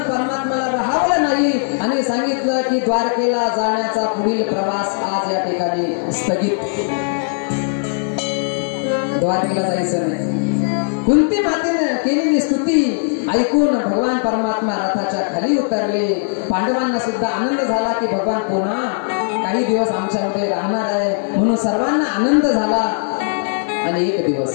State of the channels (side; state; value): right; silent; digital silence